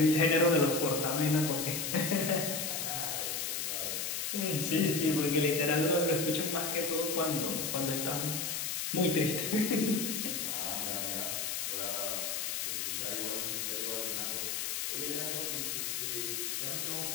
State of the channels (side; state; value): left; noise; hiss, 1 dB below the sound